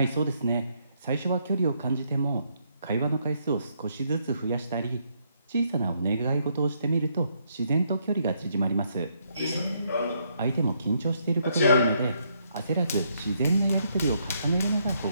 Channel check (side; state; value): both; inverted; correlation -0.74